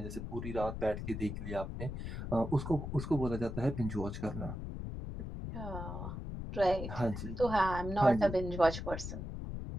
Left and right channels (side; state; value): left; noise; rumble, 6 dB below the sound